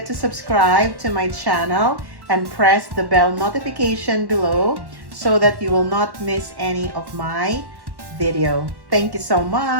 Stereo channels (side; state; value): left; late; 1.1 ms